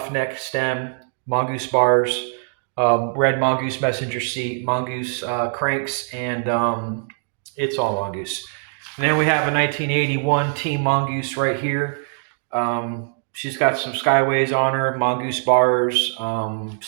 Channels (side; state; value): left; silent; digital silence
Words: neck stem, Mongoose bars, red Mongoose messenger seat, Mongoose cranks, and it's all Mongoose. And then we have a 1981 Team Mongoose right here. She's got some Skyways on her, Mongoose bars,